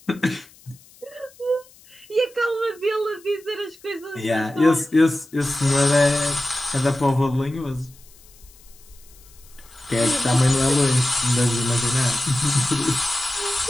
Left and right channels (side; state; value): left; noise; hiss, 26 dB below the sound